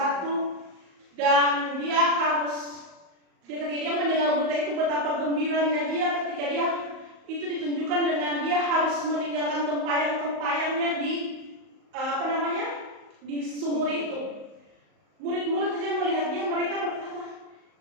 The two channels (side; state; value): left; late; 38 ms